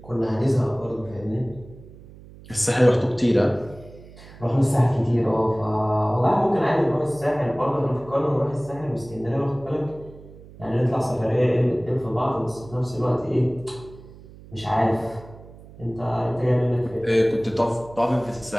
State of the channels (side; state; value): right; noise; hum, 20 dB below the sound